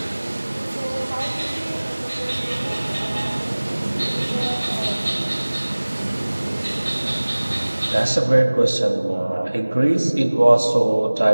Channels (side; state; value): both; inverted; correlation -1.00